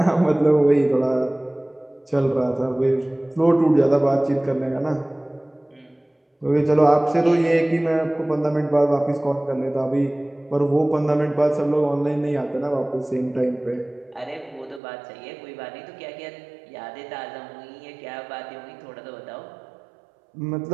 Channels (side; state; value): left; drops out; at 14.8 s